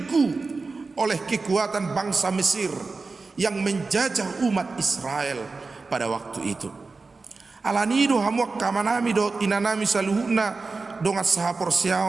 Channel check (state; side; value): quieter; left; 4.0 dB